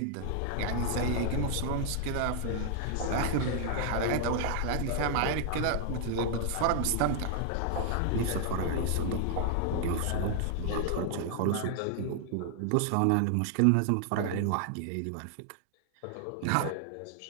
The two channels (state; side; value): different; both; correlation 0.00